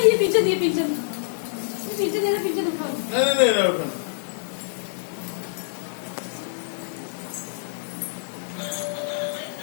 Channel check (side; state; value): right; silent; digital silence